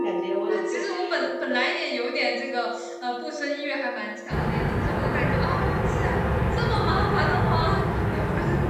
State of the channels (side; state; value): both; identical; correlation 1.00